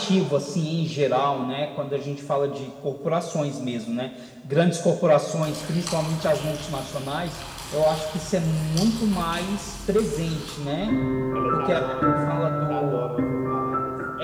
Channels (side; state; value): both; identical; correlation 1.00